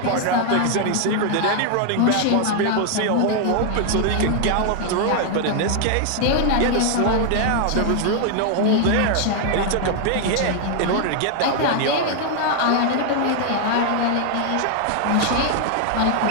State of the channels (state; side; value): different; both; correlation 0.00